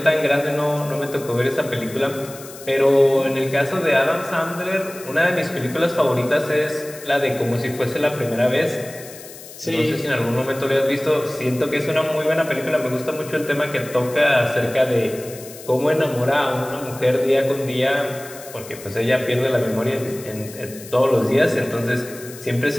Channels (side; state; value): left; noise; hiss, 16 dB below the sound